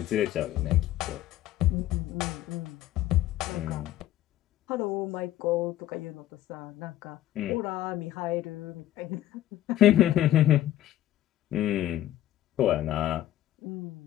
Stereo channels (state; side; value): quieter; right; 13.4 dB